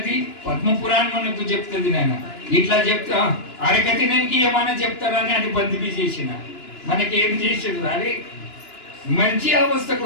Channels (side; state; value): right; late; 2.9 ms